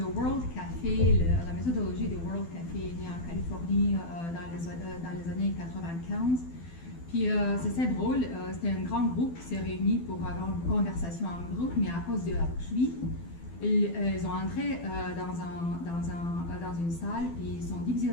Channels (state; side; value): late; right; 12 ms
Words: World Café, la méthodologie du World Café est née en Californie dans les années 95. Puis, c'est assez drôle, c'était un grand groupe qui s'est réuni pour avoir une conversation en groupe, mais à cause de la pluie, ils ont entré dans une salle et ils sont divisés